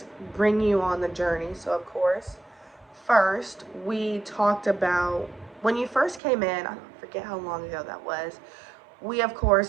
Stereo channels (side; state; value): left; drops out; at 6.2 s